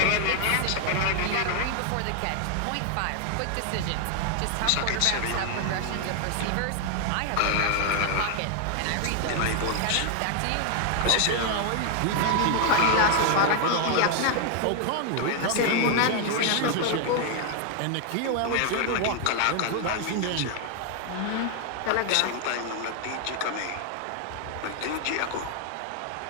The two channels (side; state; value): both; different; correlation 0.00